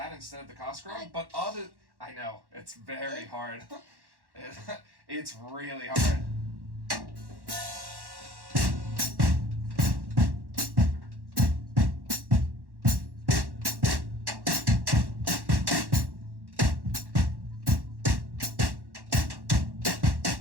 instead of the Cosgrove, but I know it's very hard. It's really hard.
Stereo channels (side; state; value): left; late; 1.1 ms